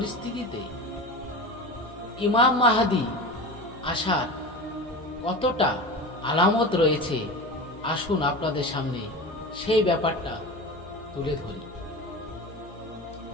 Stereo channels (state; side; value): noise; left; hum, 20 dB below the sound